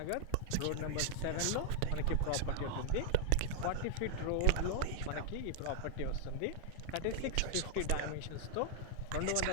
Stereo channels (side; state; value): both; different; correlation -0.01